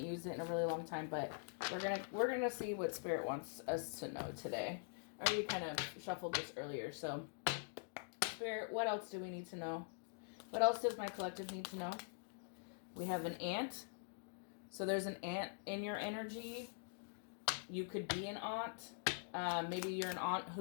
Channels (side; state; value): right; silent; digital silence